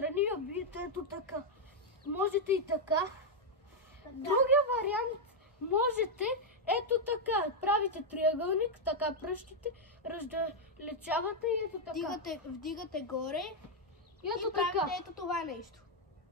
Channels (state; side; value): normal; both; correlation -0.01